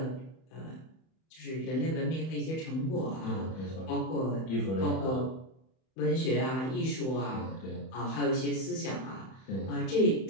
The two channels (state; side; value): late; right; 31 ms